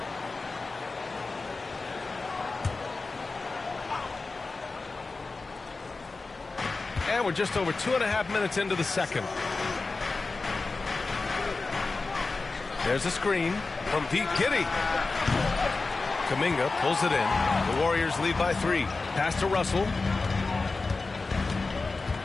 And we're just over 2.5 minutes into the second. There's a screen from Pete Giddy. Kuminga pulls it in. The Warriors lead by 3. Pass to Russell.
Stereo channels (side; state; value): right; quieter; 3.8 dB